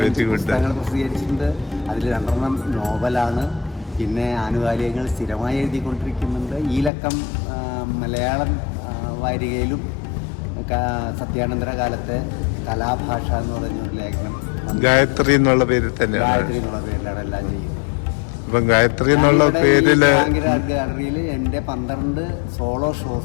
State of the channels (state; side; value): drops out; right; at 6.9 s